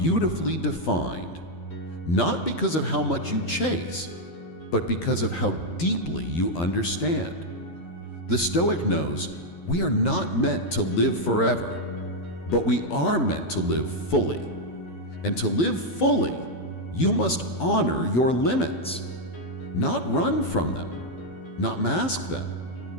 defined, not because of how much you chase, but because of how deeply you understand. The Stoic knows we are not meant to live forever, but we are meant to live fully. And to live fully, you must honor your limits, not run from them, not mask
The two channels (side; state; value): right; late; 12 ms